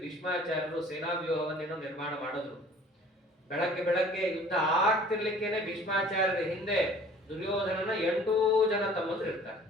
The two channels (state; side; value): normal; both; correlation 0.50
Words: ಭೀಷ್ಮಾಚಾರ್ಯರು ಸೇನಾ ವ್ಯೂಹವನ್ನೇನೋ ನಿರ್ಮಾಣ ಮಾಡಿದ್ರು. ಬೆಳಗ್ಗೆ ಯುದ್ಧ ಆಗ್ತಿರ್ಲಿಕ್ಕೇನೆ ಭೀಷ್ಮಾಚಾರ್ಯರ ಹಿಂದೆ ದುರ್ಯೋಧನನ 8 ಜನ ತಮ್ಮಂದ್ರು ಇರ್ತಾರೆ.